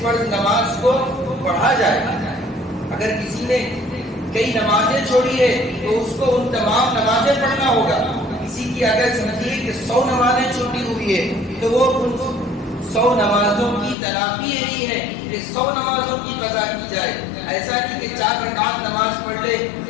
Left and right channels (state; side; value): drops out; right; at 14.0 s